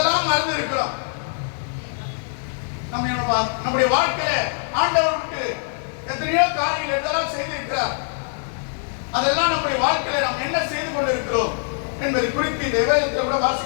மறந்து இருக்கிறோம்? நம்முடைய வாழ்க்கையில ஆண்டவருக்கு எத்தனையோ காரியங்கள் எதெல்லாம் செய்திருக்கிறார். அதெல்லாம் நம்முடைய வாழ்க்கையில நாம் என்ன செய்து கொண்டு இருக்கிறோம் என்பதை குறித்து இந்த வேதத்தை கூட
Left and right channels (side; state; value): right; silent; 62 dB below the other